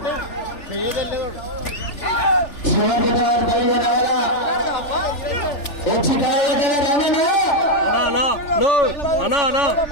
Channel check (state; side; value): late; right; 3.4 ms